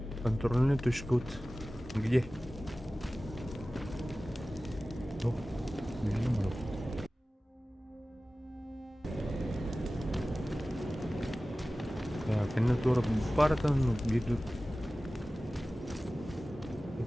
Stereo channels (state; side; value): normal; both; correlation 0.96